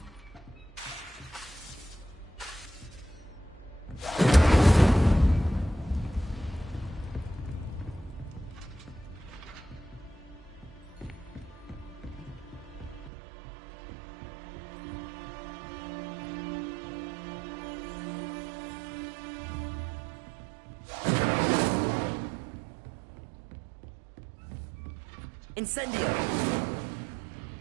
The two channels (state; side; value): drops out; left; at 13.1 s